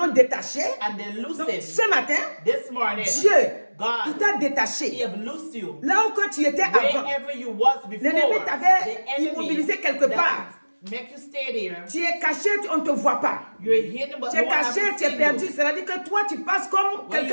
détaché, and they loose donc him, ce matin, this morning, Dieu, il God, t'a He détaché. have loosed you. Là où quand tu étais avant, Wherever you was before, l'ennemi the t'avait enemy immobilisé quelque that part. make you stay there, Tu es caché, on ne te voit pas. you're hidden, but Tu no es one has caché, tu es seen perdu. you. C'est-à-dire que toi, tu passes comme When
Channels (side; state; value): both; inverted; correlation -1.00